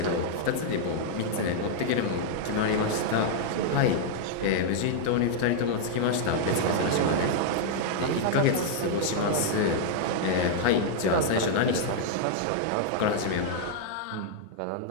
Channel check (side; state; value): both; different; correlation -0.01